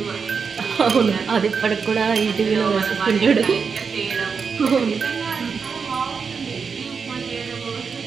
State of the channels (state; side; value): quieter; left; 5.7 dB